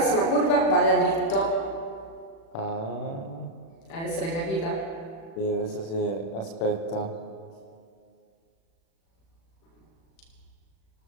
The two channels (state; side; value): late; right; 36 ms